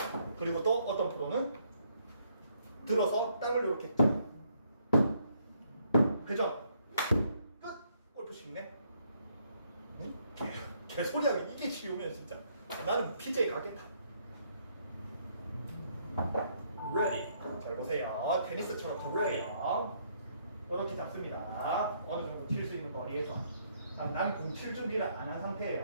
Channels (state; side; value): inverted; both; correlation -0.70